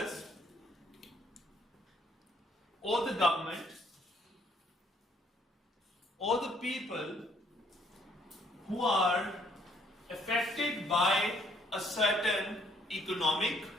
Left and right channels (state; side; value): normal; both; correlation 0.66